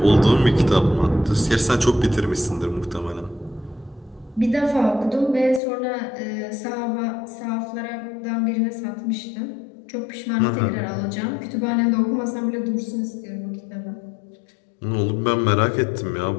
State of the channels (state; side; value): drops out; right; at 5.6 s